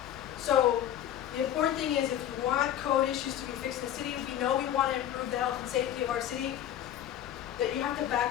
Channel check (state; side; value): quieter; right; 11.0 dB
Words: So the important thing is, if you want code issues to be fixed in the city, if you know we want to improve the health and safety of our city, that you have to